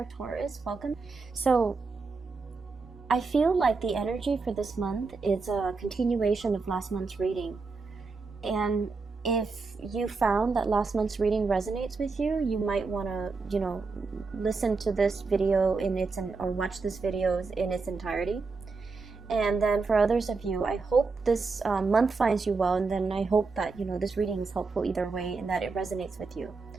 Taurus. Welcome. So, I feel like the energy for this month is a continuation of last month's reading. And if you found that last month's reading resonates with you, you might want to, listen to this video or watch this video in its entirety. And then for others of you, I hope this month finds you well, and then I hope that, this reading is helpful either way and that it resonates with you.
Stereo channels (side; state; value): left; quieter; 4.3 dB